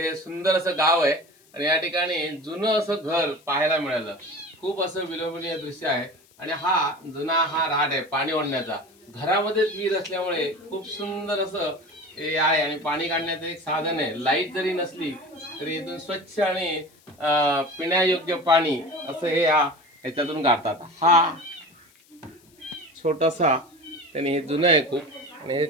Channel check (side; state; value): left; noise; hiss, 30 dB below the sound